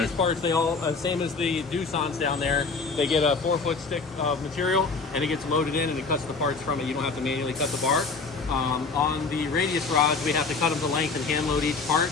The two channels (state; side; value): quieter; right; 4.4 dB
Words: parts, they all, same as the Doosan's down there, they get a 4-foot stick of material and it gets loaded in and it cuts the parts from it. You don't have to manually cut the bar. On the radius rods, we have to cut them to length and hand load each part.